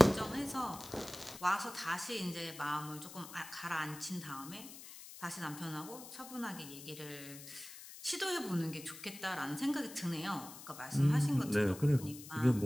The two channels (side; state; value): left; noise; hiss, 14 dB below the sound